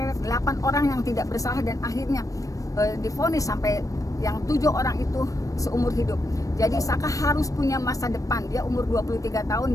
8 orang yang tidak bersalah dan akhirnya divonis sampai yang 7 orang itu seumur hidup. Jadi Saka harus punya masa depan. Dia umur 23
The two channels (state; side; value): late; right; 0.16 ms